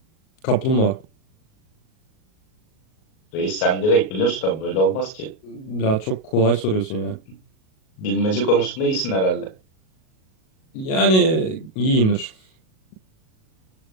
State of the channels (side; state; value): right; late; 38 ms